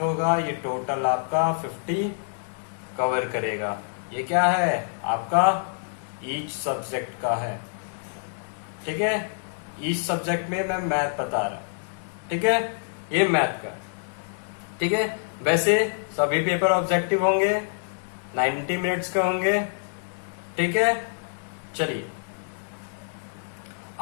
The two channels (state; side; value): silent; right; 61 dB below the other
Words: ये टोटल आपका 50 कवर करेगा। ये क्या है, आपका ईच सब्जेक्ट का है। ठीक है, ईच सब्जेक्ट में मैं मैथ बता रहा। ठीक है, ये मैथ का। ठीक है, वैसे सभी पेपर ऑब्जेक्टिव होंगे, 90 मिनट्स के होंगे। ठीक है, चलिए